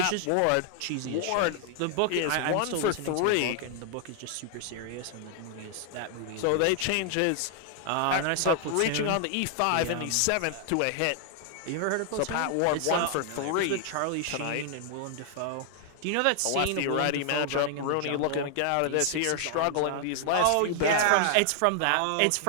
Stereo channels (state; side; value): different; both; correlation 0.00